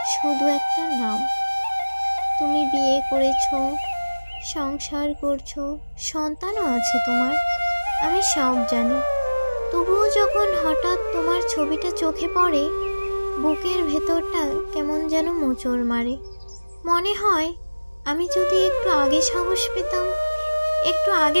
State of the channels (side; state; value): both; inverted; correlation -1.00